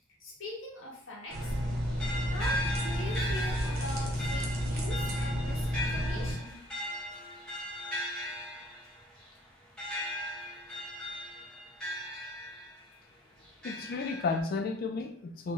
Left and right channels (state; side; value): normal; both; correlation 0.61